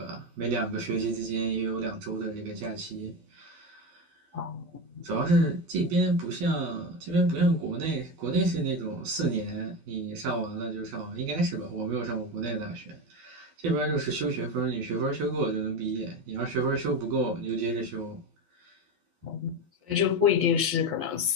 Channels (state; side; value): late; left; 12 ms